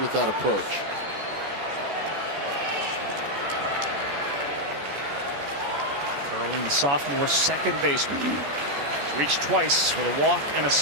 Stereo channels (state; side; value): late; left; 14 ms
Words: that approach. Kurland, the sophomore 2nd baseman. He's reached twice with a walk and a